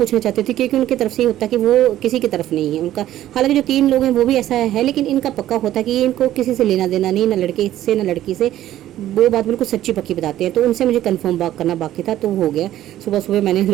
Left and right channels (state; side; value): quieter; left; 13.1 dB